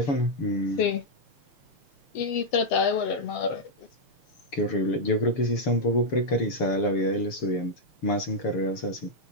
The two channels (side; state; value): right; late; 6.9 ms